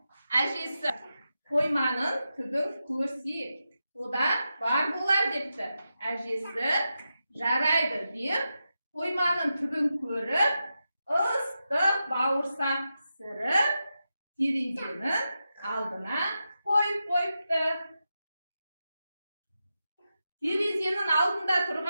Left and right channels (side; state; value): both; inverted; correlation -0.89